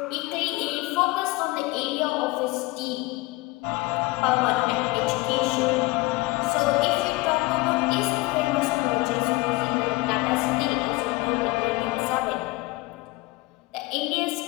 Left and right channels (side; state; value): right; quieter; 22.0 dB